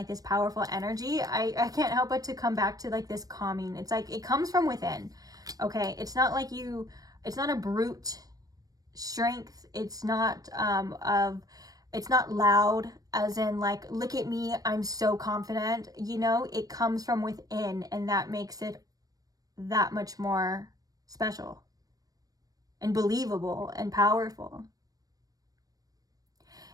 this powerful energy, I can't help but to come back to like this calming. It's like it comes from within. Okay, it's not like it's not a brute strength. It's not it's not loud, as in like, look at me, I'm so confident. You know, it comes from within, and that makes it that much more special and believable and powerful.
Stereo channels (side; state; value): left; late; 0.18 ms